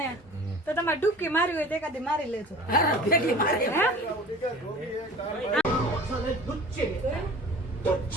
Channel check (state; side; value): normal; both; correlation 0.42